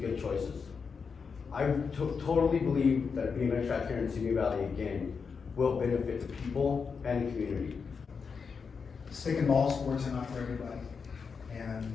good choices. I totally believe that a BMX track here in Simi Valley again will benefit the people and the community. Stick and ball sports are not for everybody, and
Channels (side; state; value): right; quieter; 5.6 dB